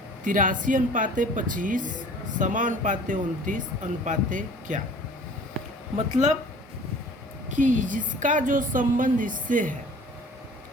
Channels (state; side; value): normal; both; correlation 0.47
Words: 83:25 समानुपाते 29 अनुपाते क्या। मतलब कि जिसका जो संबंध इससे है,